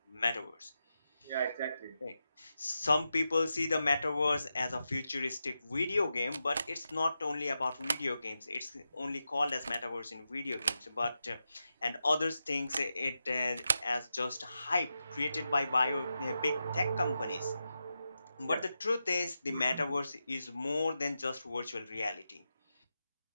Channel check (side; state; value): both; inverted; correlation -0.89